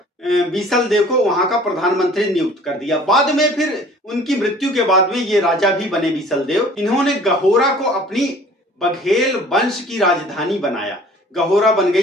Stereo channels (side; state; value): both; normal; correlation 0.50